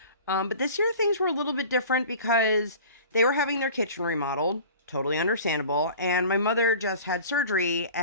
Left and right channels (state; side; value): inverted; both; correlation -0.42